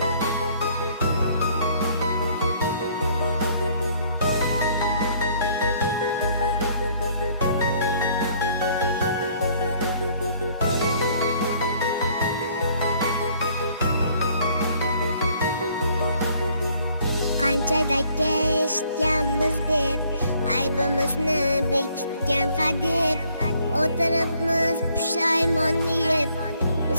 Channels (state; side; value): inverted; both; correlation -0.63